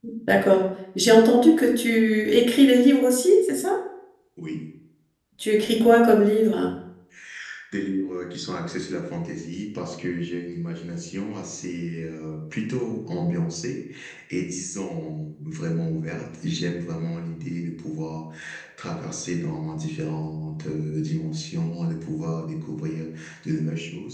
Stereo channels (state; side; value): identical; both; correlation 1.00